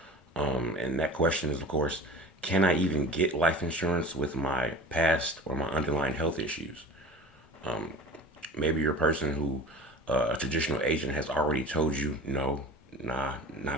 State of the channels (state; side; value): normal; both; correlation 0.39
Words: And that question is, of course, can I even get life insurance with my past or my underlying health issues? Maybe you're a person who a traditional agent has already told you, no, nah,